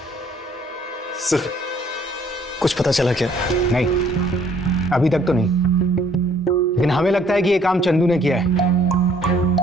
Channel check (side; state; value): both; normal; correlation 0.61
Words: सर कुछ पता चला क्या? नहीं, अभी तक तो नहीं, लेकिन हमें लगता है कि ये काम चंदू ने किया है।